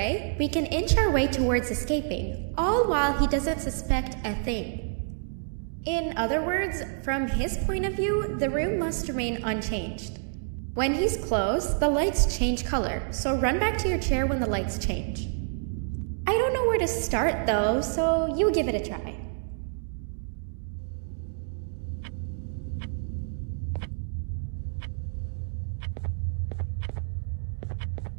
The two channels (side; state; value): left; silent; digital silence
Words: we can inch our way towards escaping, all while he doesn't suspect a thing. In other words, from his point of view, the room must remain unchanged. When he's close, the lights change color, so run back to your chair when the lights change. I don't know where to start though, so you give it a try.